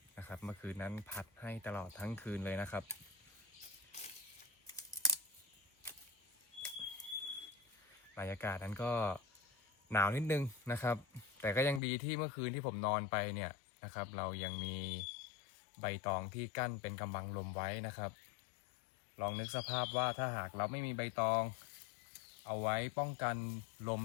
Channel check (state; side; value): drops out; right; at 11.8 s